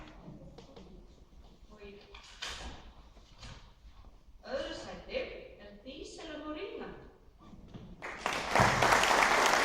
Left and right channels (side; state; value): both; identical; correlation 1.00